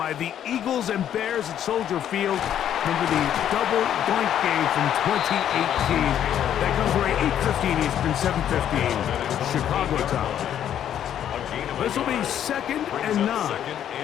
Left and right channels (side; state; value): right; quieter; 10.2 dB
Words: the Eagles and Bears at Soldier Field. Remember the double doink game from 2018. That comes right 8:15 Eastern, 7:15 Chicago time. This will be 2nd and 9.